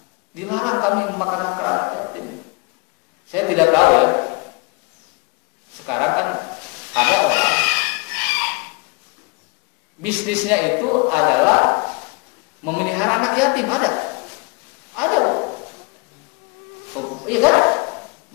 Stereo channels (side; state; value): right; quieter; 28.5 dB